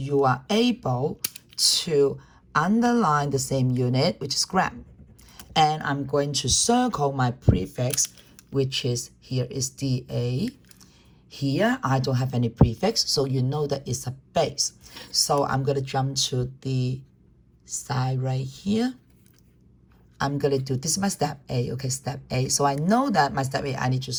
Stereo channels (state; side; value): identical; both; correlation 1.00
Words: are able to underline the same unit, which is gram. And I'm going to circle my prefix, which is here is DA. Here, I don't have any prefix, so you know that it's a base. So I'm going to jump to the side right here. I'm going to do, this is my step A, okay, step A. So I know that my step A, I need to